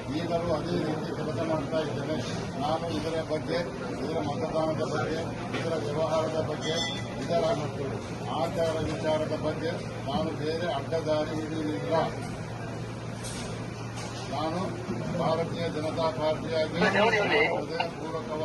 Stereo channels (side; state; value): both; identical; correlation 1.00